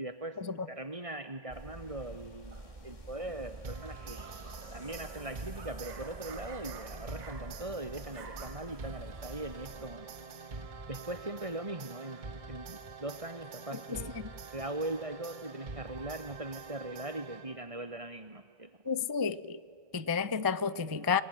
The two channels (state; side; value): late; left; 1.6 ms